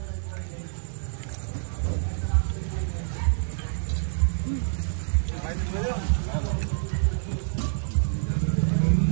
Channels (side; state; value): left; silent; digital silence